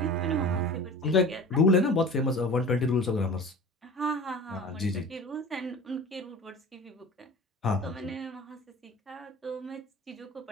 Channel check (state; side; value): normal; both; correlation 0.38